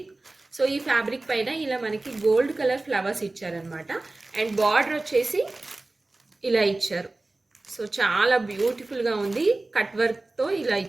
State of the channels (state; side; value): quieter; left; 3.0 dB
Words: సో ఈ ఫ్యాబ్రిక్ పైన ఇలా మనకి గోల్డ్ కలర్ ఫ్లవర్స్ ఇచ్చారనమాట. అండ్ బార్డర్ వచ్చేసి ఇలా ఇచ్చారు. సో చాలా బ్యూటిఫుల్గా ఉంది. కట్ వర్క్తో ఇలా